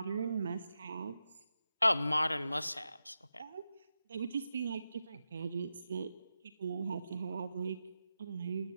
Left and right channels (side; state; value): both; inverted; correlation -0.90